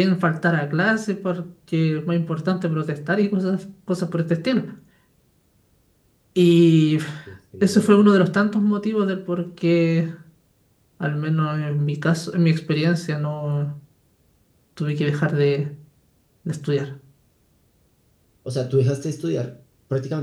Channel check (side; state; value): both; identical; correlation 1.00